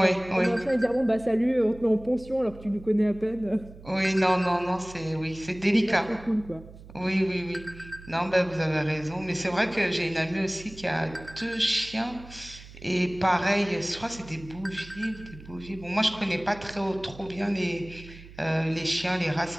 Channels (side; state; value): right; noise; hum, 18 dB below the sound